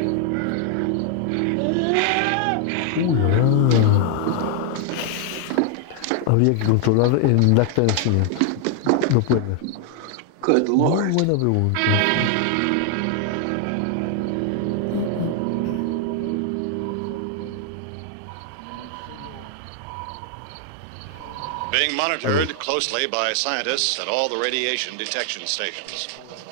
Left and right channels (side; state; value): both; different; correlation 0.00